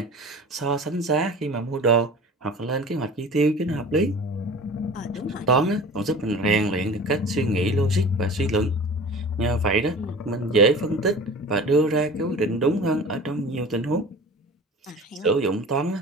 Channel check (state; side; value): normal; both; correlation 0.39